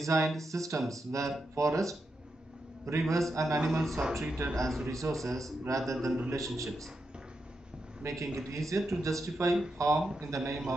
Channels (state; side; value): normal; both; correlation 0.85